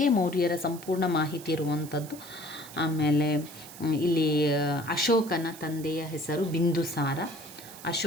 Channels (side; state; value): right; noise; hiss, 16 dB below the sound